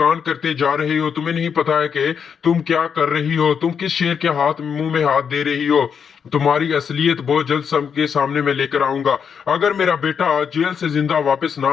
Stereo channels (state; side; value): quieter; right; 7.0 dB